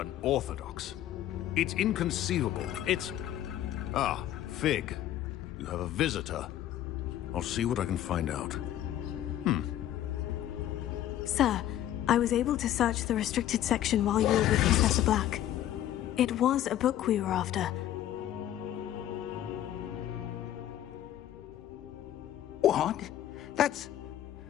It's inconceivable. It's... Ah, Fig. You have a visitor. I'll see what I can find out. Sir, I was able to search the restricted section while you were with Professor Black. It was a book we were after. What? That's...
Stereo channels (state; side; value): quieter; right; 12.2 dB